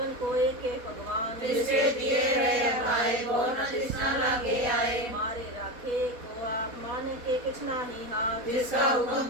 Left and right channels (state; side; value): late; left; 4.1 ms